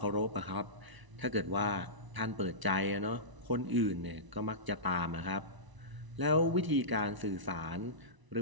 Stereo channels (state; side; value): late; left; 1.0 ms